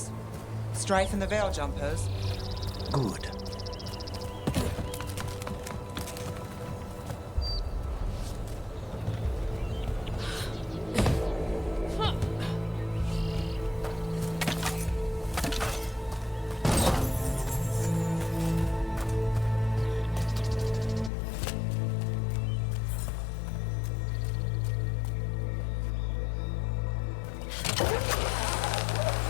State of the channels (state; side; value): drops out; right; at 21.1 s